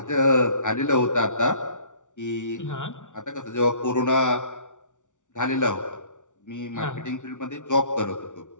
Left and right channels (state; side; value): late; right; 0.86 ms